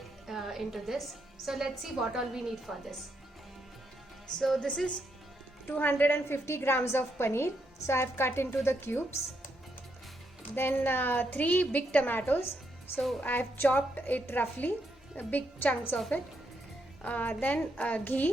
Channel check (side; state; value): both; normal; correlation 0.78